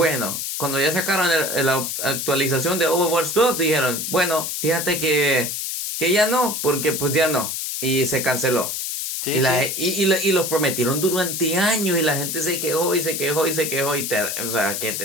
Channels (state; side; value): noise; left; hiss, 3 dB below the sound